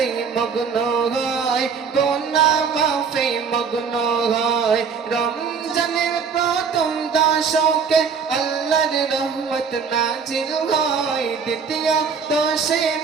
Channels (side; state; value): left; quieter; 6.0 dB